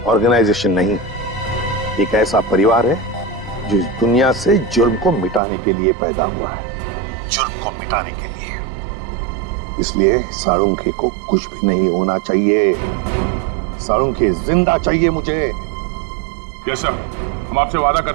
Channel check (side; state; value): left; drops out; at 5.4 s